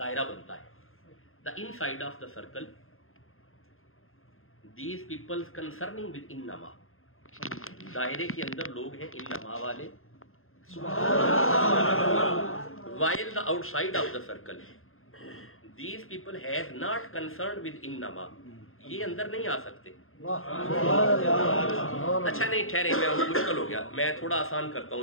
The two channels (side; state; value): right; late; 0.61 ms